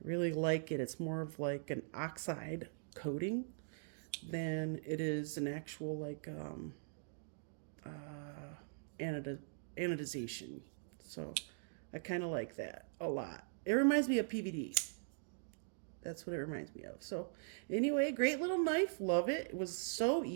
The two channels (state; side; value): silent; left; digital silence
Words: I really like it. It's more of like an oxide coating than it is an actual like anodization. So I kind of like that a lot. It reminds me of PVD. That's what it reminds me of. So anyway, great little knife. Love it. It was so